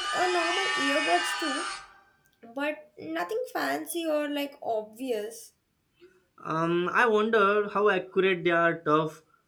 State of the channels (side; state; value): both; identical; correlation 1.00